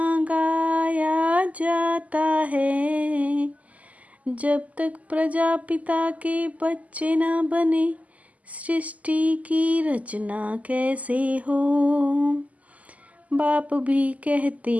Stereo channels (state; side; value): late; left; 0.072 ms